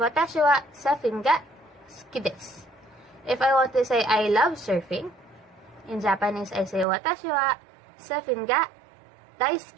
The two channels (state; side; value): drops out; left; at 6.9 s